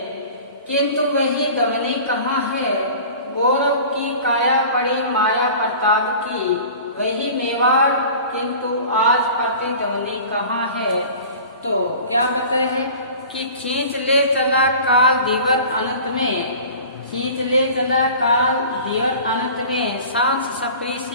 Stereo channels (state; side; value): inverted; both; correlation -0.41